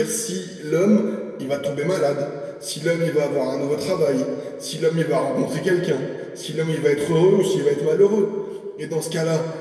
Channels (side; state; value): both; identical; correlation 1.00